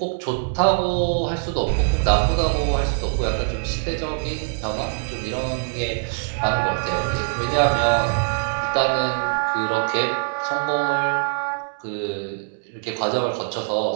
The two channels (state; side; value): silent; left; 63 dB below the other